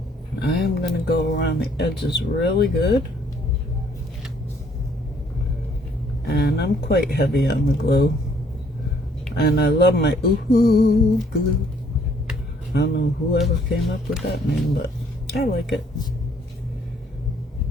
I am going to go around the edges really good. And I'm quite heavy on the glue. And I love my ooh glue. I don't know whoever came up with that name, but I like it.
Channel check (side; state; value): both; normal; correlation 0.64